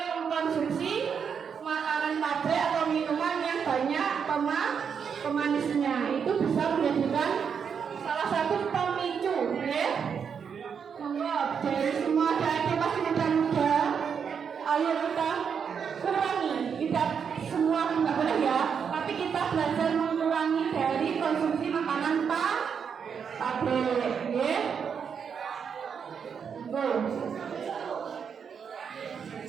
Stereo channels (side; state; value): left; quieter; 6.9 dB